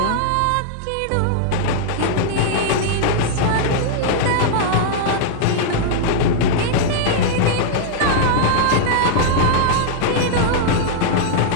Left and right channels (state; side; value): different; both; correlation -0.01